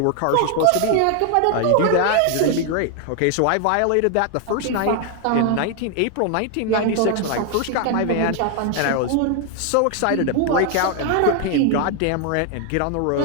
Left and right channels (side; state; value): both; different; correlation 0.00